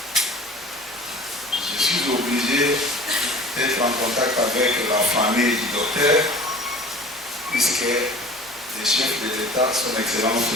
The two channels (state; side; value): normal; both; correlation 0.43